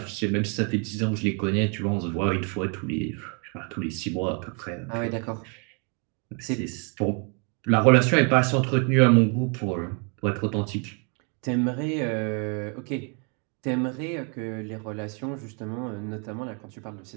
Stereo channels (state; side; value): quieter; left; 36.5 dB